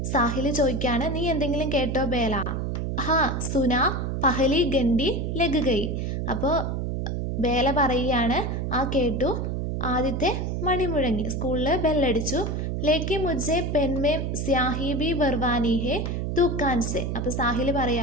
സാഹിൽ ചോദിക്കുകയാണ്, നീ എന്തെങ്കിലും കേട്ടോ ബേല? ഹാ സുനാ പഹലി ഗണ്ടി ലഗ് ഗയി, അപ്പോൾ ബേല പറയുകയാണ്, ആ കേട്ടു, ആദ്യത്തെ മണി മുഴങ്ങി, സ്കൂളിൽ ബെല്ലടിച്ചു. ലേക്കി മുജ്ജെ പെൻമേം സ്യാഹി ബി ബർവാനി ഹേ ദുക്കാൻ സെ, അപ്പോൾ സാഹിൽ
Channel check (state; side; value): noise; right; hum, 2 dB below the sound